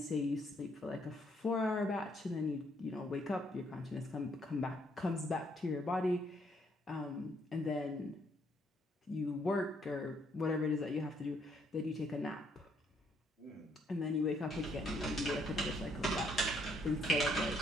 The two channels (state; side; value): normal; both; correlation 0.70